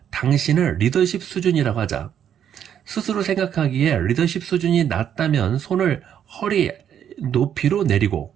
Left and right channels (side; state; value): left; quieter; 9.3 dB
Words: 당신의 리더십 수준이라고 하자. 스스로 생각하기에 리더십 수준이 낮다면 손을 허리 높이로 내리고